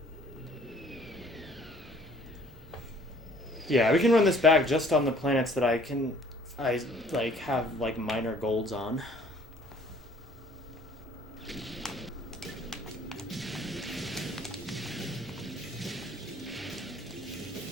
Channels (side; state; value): both; normal; correlation 0.56